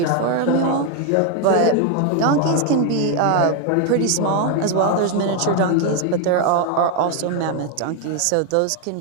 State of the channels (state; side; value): different; both; correlation 0.01